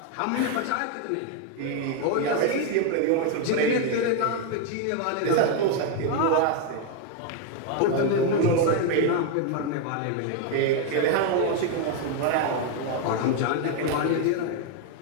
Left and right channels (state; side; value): different; both; correlation 0.01